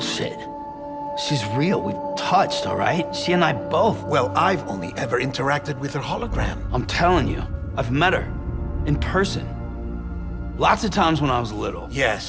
She's real. We've touched, all right? She and I both. Well, I've only ever interacted with her hologram. I'm telling you, I've met her. In person. Lots of times when I was little.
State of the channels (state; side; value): identical; both; correlation 1.00